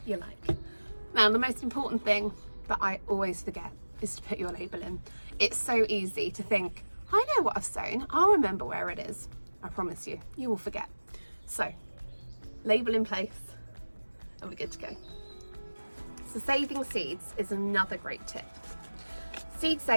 you like. Now, the most important thing that I always forget is to put your label in. It's so easy to think, I know what I've sown, I'll remember where it is. I promise you, you will forget. So, label in place, and we're good to go. So saving seeds is another great tip. Seed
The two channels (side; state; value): both; inverted; correlation -1.00